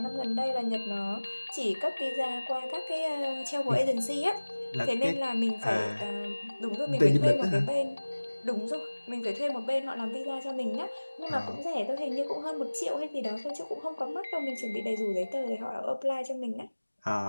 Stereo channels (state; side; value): inverted; both; correlation -1.00